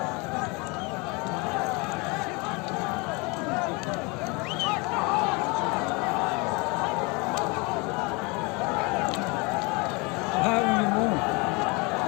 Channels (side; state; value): right; quieter; 28.2 dB